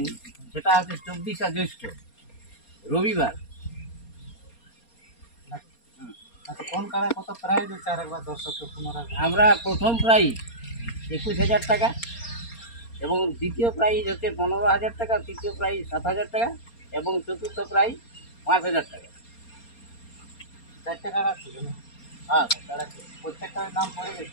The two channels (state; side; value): late; right; 4.3 ms